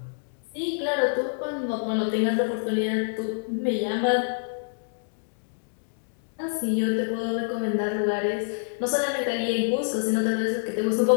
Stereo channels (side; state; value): right; silent; digital silence